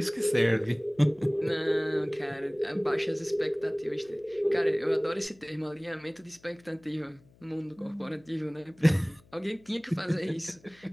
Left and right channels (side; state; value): left; noise; hum, 28 dB below the sound